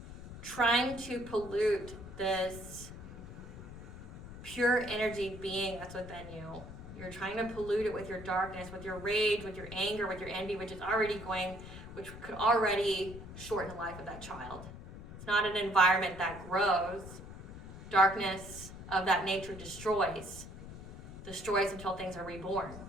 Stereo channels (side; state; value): left; noise; rumble, 13 dB below the sound